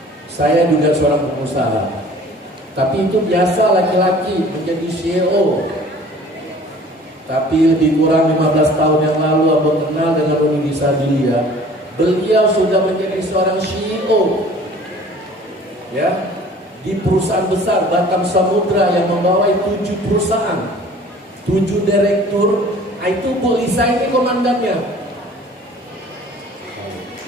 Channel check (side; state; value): both; normal; correlation 0.48